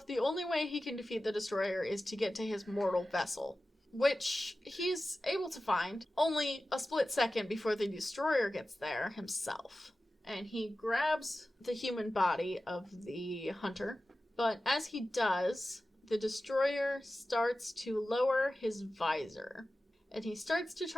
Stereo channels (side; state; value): both; normal; correlation 0.95